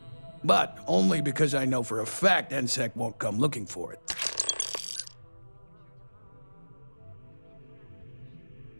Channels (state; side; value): inverted; both; correlation -1.00